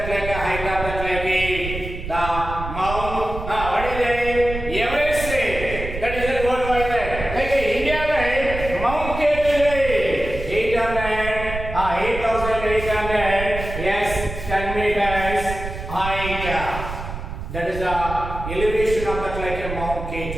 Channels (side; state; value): right; noise; rumble, 7 dB below the sound